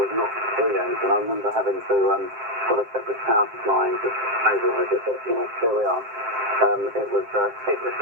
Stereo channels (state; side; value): late; left; 7.6 ms